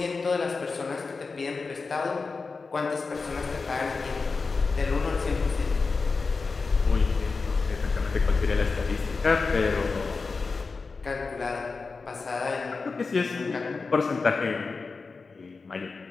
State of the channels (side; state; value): right; quieter; 4.4 dB